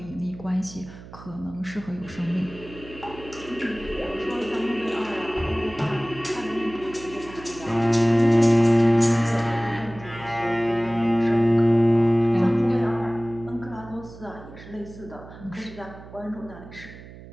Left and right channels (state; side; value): noise; right; hum, 17 dB below the sound